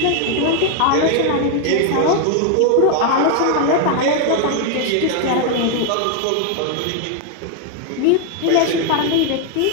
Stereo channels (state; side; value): different; both; correlation 0.01